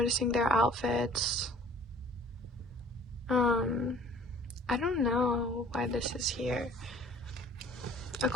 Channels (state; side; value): normal; both; correlation 0.51